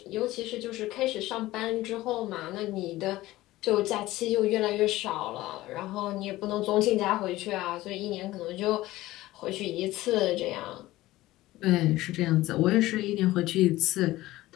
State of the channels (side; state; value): right; quieter; 17.1 dB